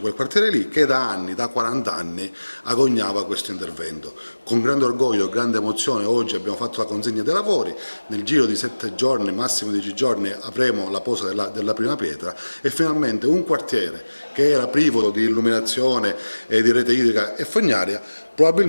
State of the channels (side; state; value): both; inverted; correlation -1.00